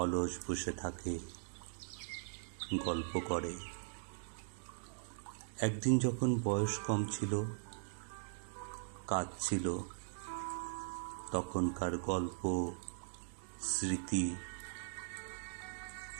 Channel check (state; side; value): silent; left; digital silence